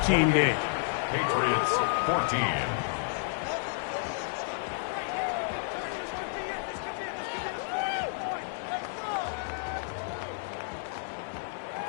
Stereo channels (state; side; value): silent; right; digital silence